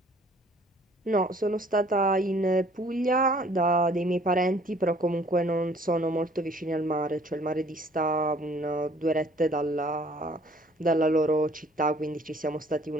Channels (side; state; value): both; normal; correlation 0.57